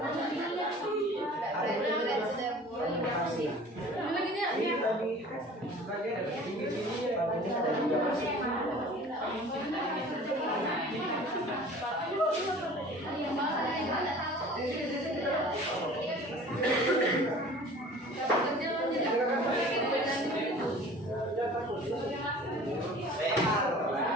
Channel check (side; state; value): both; normal; correlation 0.45